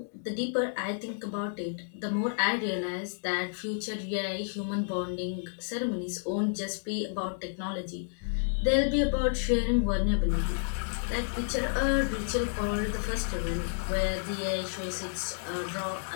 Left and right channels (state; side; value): silent; right; digital silence